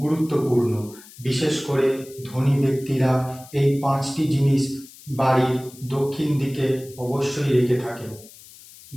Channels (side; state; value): left; noise; hiss, 21 dB below the sound